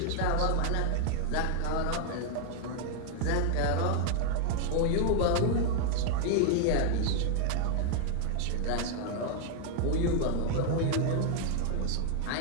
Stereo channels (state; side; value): different; both; correlation 0.00